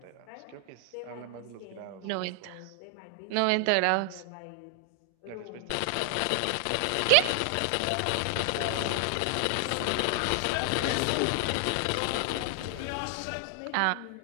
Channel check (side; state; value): both; different; correlation 0.00